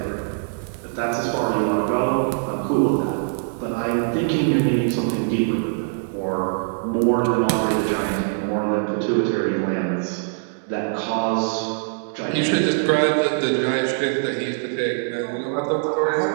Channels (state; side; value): silent; left; digital silence